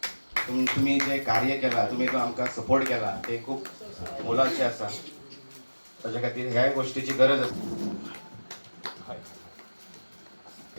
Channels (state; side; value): inverted; both; correlation -1.00